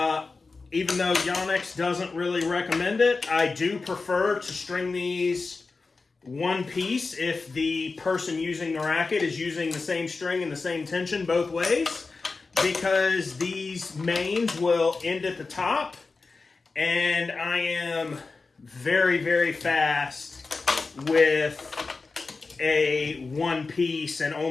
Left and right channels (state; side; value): quieter; right; 4.1 dB